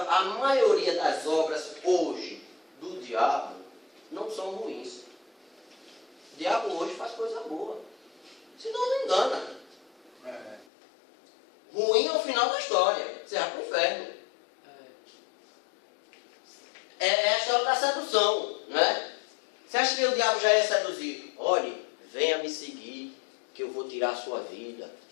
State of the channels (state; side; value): drops out; right; at 10.7 s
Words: maioria das obras hoje do diabo não são ruins. O diabo hoje faz coisa boa. Senão não engana. Ruim é o final da história. Você vai para o inferno. É a história da sedução, né? Você acha que o diabo já ia seduzir? Olhe, venha me seguir, que eu vou tirar a sua vida.